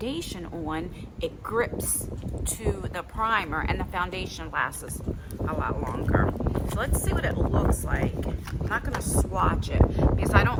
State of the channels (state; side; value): identical; both; correlation 1.00